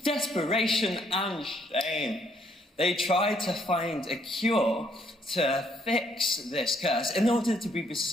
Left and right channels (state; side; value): normal; both; correlation 0.70